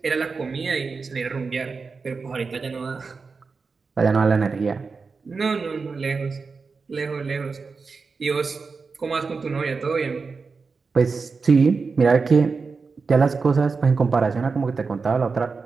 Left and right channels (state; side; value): quieter; left; 4.7 dB